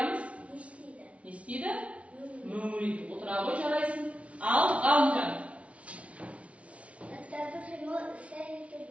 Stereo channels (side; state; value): left; late; 0.063 ms